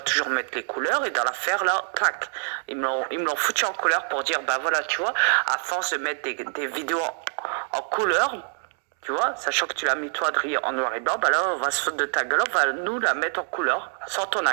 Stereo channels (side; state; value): left; silent; digital silence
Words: toujours mettre les couleurs, et dans l'affaire là, clac, ils me l'ont foutu en couleur pour dire bah voilà, tu vois, à force de mettre des vidéos en couleur, tu vois, sachant que tu l'as mis toi Adrien en noir et blanc, bah là on va se foutre de ta gueule, on va nous la mettre en couleur, sans ton